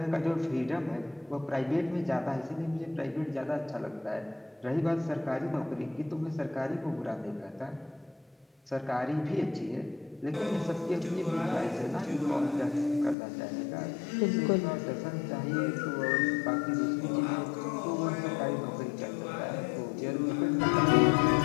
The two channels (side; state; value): right; drops out; at 13.2 s